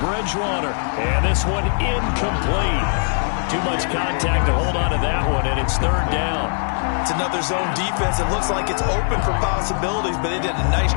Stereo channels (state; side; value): silent; right; digital silence